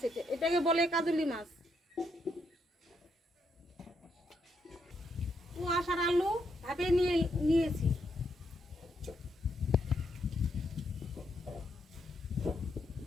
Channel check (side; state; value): both; normal; correlation 0.78